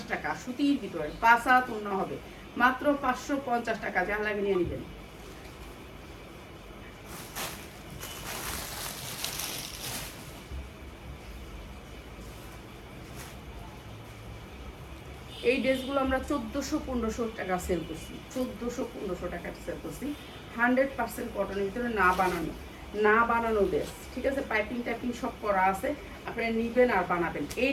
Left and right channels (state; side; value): identical; both; correlation 1.00